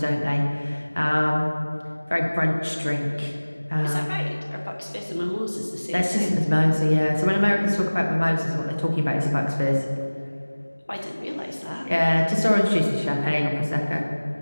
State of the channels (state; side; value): inverted; both; correlation -1.00